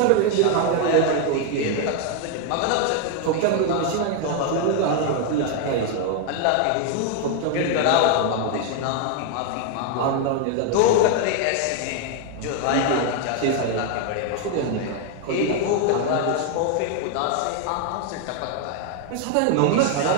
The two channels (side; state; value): both; different; correlation 0.01